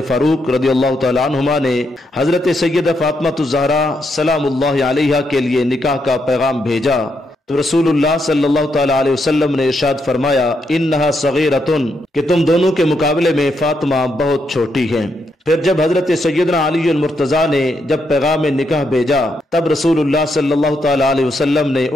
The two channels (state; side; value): normal; both; correlation 0.79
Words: فاروق رضی اللہ تعالی عنہما نے حضرت سیدہ فاطمہ الزہرا سلام اللہ علیہا کے لیے نکاح کا پیغام بھیجا تو رسول اللہ صلی اللہ تعالی علیہ وسلم نے ارشاد فرمایا انہا صغیرۃ، کہ تم دونوں کے مقابلے میں فاطمہ بہت چھوٹی ہیں۔ پھر جب حضرت سیدنا علی المرتضیٰ نے جب پیغام نکاح بھیجا تب رسول اللہ صلی اللہ تعالی علیہ وسلم نے